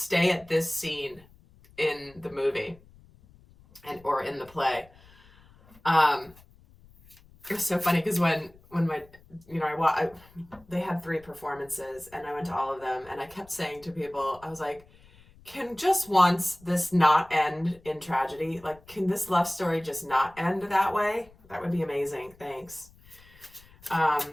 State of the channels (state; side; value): noise; left; rumble, 26 dB below the sound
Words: at this scene in the movie or in the play. It was so funny because when my, they had 3 performances and I went to all of them, and I kept saying to people, I was like, can just once this not end in tragedy? Like, can this love story just not end that way? That would be amazing. Thanks.